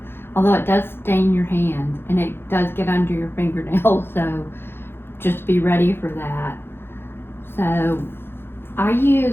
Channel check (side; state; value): right; late; 0.11 ms